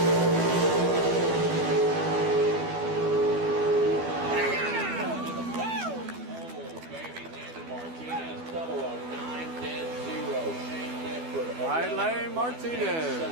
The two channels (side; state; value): left; late; 12 ms